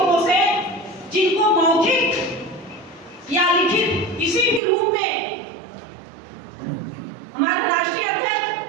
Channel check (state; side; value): drops out; left; at 4.6 s